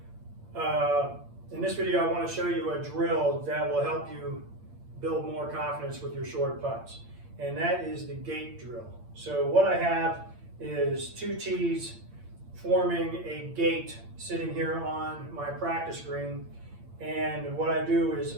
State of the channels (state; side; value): late; left; 8.7 ms